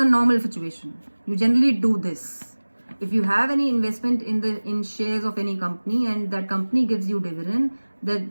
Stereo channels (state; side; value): inverted; both; correlation -1.00